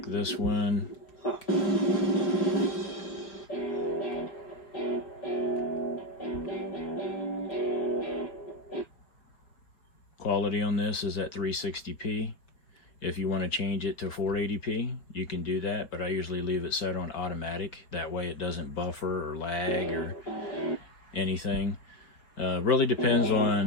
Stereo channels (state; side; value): late; right; 4.9 ms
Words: this one, quality on this is at 360p. If you want to change it to 480p, you can do that, but I usually leave it set on automatic. That way it doesn't buffer or lag or anything. Really depends